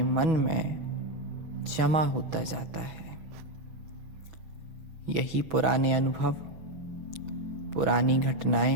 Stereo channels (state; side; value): late; left; 6.5 ms